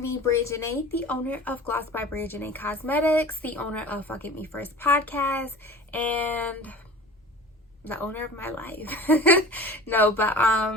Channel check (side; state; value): both; normal; correlation 0.40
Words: Bria Janae, the owner of Gloss by Bria Janae Cosmetics, the owner of Fuck It Me First podcast, and the owner of my life.